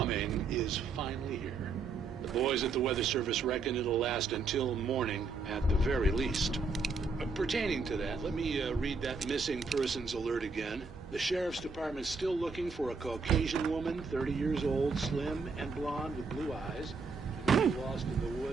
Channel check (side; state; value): left; quieter; 4.4 dB